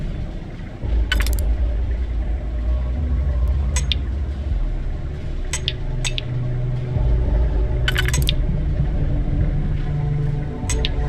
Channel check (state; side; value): identical; both; correlation 1.00